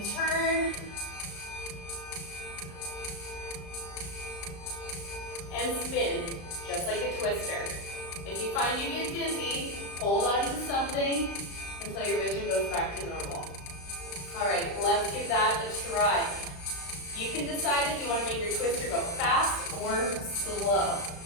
turn and spin, just like a twister. If you find you get dizzy, hold on to something until your vision goes back to normal. All right, let's give that a try. You can decide if you want to make your twister go fast or slow.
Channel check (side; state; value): right; late; 35 ms